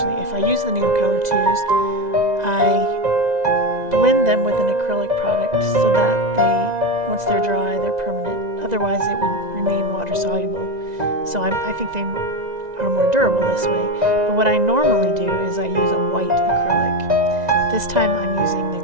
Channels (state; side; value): late; left; 2.0 ms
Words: if I use the Neocolor 2s, I blend them with an acrylic product so that once they're dry, they're permanent. Otherwise it would remain water soluble. So I think they are more durable this way. But what I normally do is I use a white acrylic. This time I'm using the